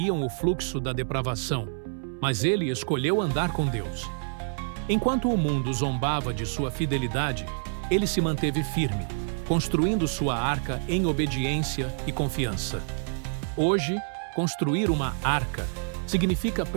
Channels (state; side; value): silent; left; 60 dB below the other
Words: o fluxo da depravação, mas ele escolheu andar com Deus. Enquanto o mundo zombava de sua fidelidade, ele se manteve firme, construindo sua arca em obediência e confiança. Hoje, construir uma arca significa